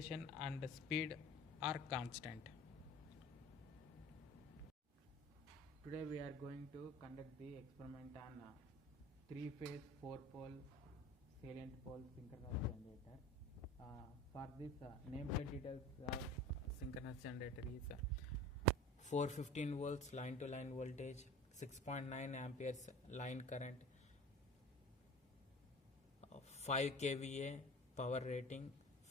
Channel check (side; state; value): both; normal; correlation 0.39